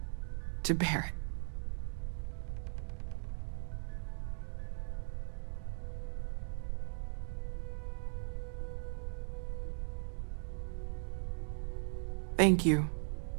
to Barrett. Thank you.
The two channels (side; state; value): left; silent; digital silence